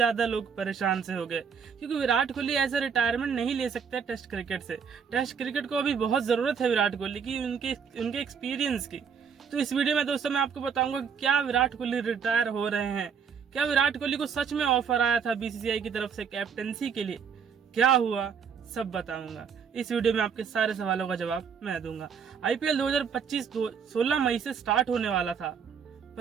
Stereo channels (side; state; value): left; quieter; 6.7 dB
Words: लोग परेशान से हो गए, क्योंकि विराट कोहली ऐसा रिटायरमेंट नहीं ले सकते टेस्ट क्रिकेट से। टेस्ट क्रिकेट को अभी बहुत जरूरत है विराट कोहली की, उनके एक्सपीरियंस की। तो इस वीडियो में दोस्तों मैं आपको बताऊंगा क्या विराट कोहली रिटायर हो रहे हैं, क्या विराट कोहली को सच में ऑफर आया था बीसीसीआई की तरफ से कैप्टनसी के लिए, क्या हुआ सब बताऊंगा। इस वीडियो में आपके सारे सवालों का जवाब मैं दूंगा। आईपीएल 2025 16 मई से स्टार्ट होने वाला था,